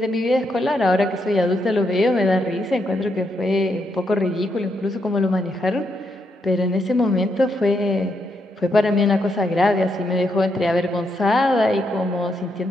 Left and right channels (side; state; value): both; normal; correlation 0.79